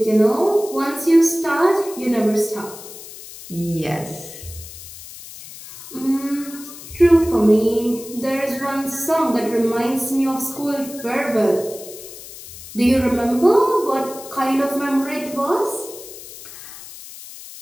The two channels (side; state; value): left; noise; hiss, 15 dB below the sound